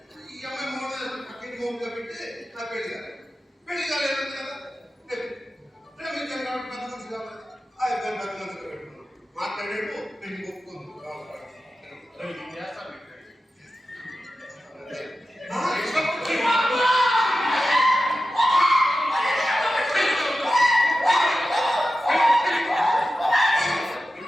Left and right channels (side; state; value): both; normal; correlation 0.93